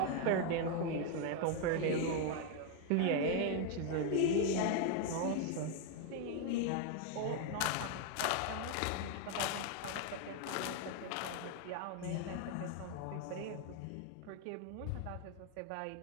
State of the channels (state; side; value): different; both; correlation 0.01